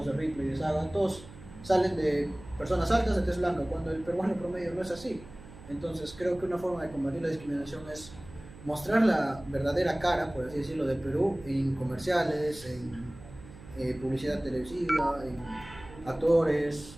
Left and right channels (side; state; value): right; noise; hum, 18 dB below the sound